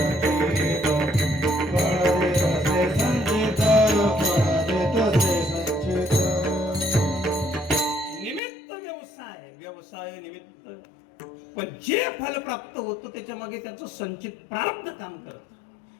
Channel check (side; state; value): right; drops out; at 8.4 s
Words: जे फल प्राप्त होतं त्याच्या मागे त्याचं संचित प्रारब्ध काम करतं.